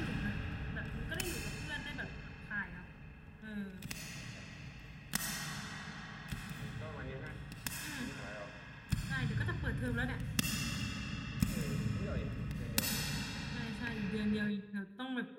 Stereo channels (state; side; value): identical; both; correlation 1.00